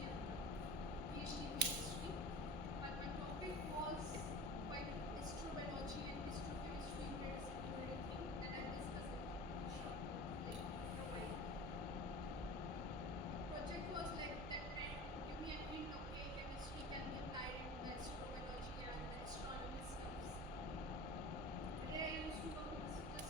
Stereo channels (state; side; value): normal; both; correlation 0.36